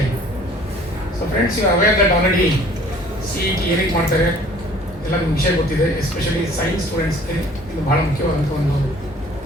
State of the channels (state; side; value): normal; both; correlation 0.52